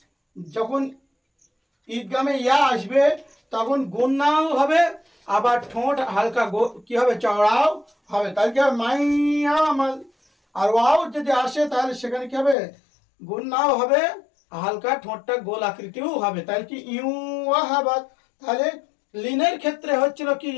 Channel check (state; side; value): drops out; right; at 12.6 s